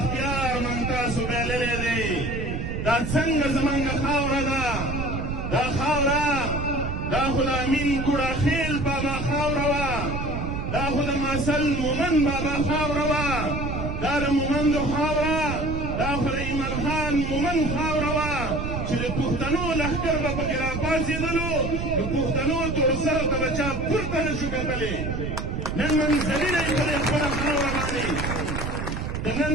موږ تاسو بایللی دی دا څنګه زموږ خاوره ده دا خاوره دا خو د امین ګوړاخیل بابا خاوره وه دا خو د ماسل مومند بابا خاوره وه دا د مومندو خاوره دا خو د ایمل خان مومند خاوره وه چې د پښتنو لښکر به پکې راپاڅېدلو د پښتنو توړسرو ته به چا پورته نه شو کتلی نن منزلونه یې په دې خپله خاوره باندې د نن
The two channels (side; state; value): right; noise; rumble, 3 dB below the sound